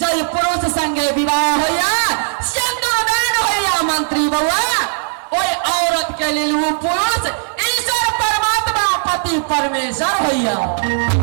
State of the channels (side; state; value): left; silent; digital silence